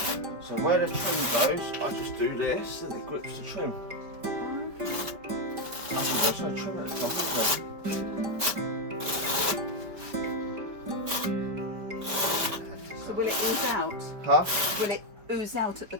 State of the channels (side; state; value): left; late; 5.2 ms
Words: where the trim goes, I just do this and it grips the trim. Actually, there's no trim at the top, is there? So will it ooze out? Huh? Will it ooze out at the